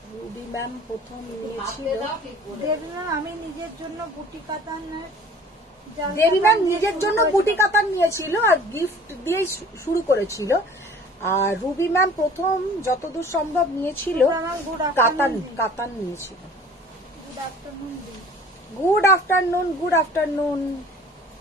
রুবি ম্যাম প্রথম নিয়েছিল। হাতে দাও ঠিক করে। দেবী ম্যাম আমি নিজের জন্য বুটি কাতানের দেবী ম্যাম নিজের জন্য বুটি কাতান নিয়েছিল আর গিফট দিয়েই শুরু করেছিল। আর রুবি ম্যাম প্রথম যতদূর সম্ভব নিয়েছিল কাতান নিয়েছিল। গুড আফটারনুন দি। Good afternoon, good afternoon.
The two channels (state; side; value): normal; both; correlation 0.47